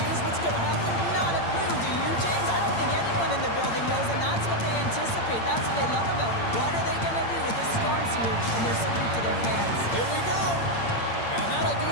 what's going to happen? Not a clue, do you, James? I don't think anyone in the building knows, and that's what they anticipate. That's what they love about it. What are they going to do with this storm surge and their salute to their fans? Here we go. And that'll do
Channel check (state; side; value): late; right; 8.8 ms